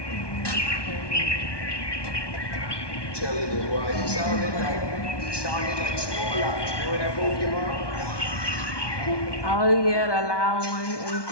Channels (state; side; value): late; right; 1.2 ms